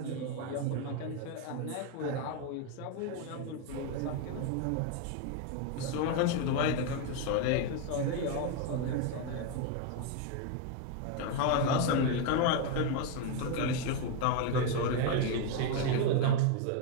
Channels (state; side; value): different; both; correlation 0.01